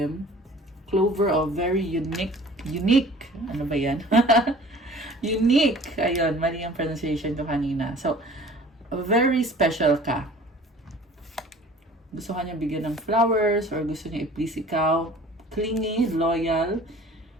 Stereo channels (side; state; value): both; normal; correlation 0.47